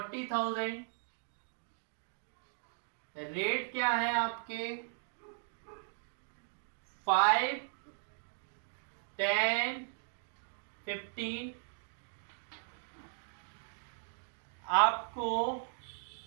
रेट क्या है आपके? 5, 10, 15। आपको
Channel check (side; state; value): left; silent; digital silence